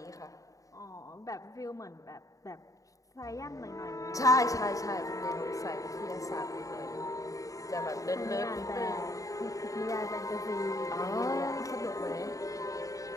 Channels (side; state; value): right; late; 0.16 ms